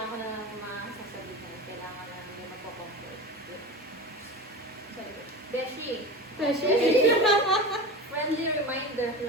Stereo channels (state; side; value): normal; both; correlation 0.29